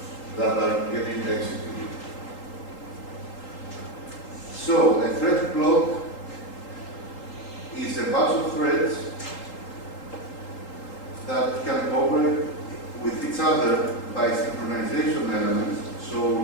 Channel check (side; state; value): right; late; 3.8 ms